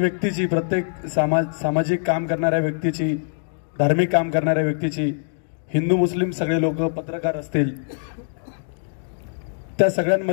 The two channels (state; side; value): silent; right; digital silence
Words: प्रत्येक सामाजिक काम करणाऱ्या व्यक्तीची, धार्मिक काम करणाऱ्या व्यक्तीची, हिंदू मुस्लिम सगळे लोक, पत्रकार असतील, त्या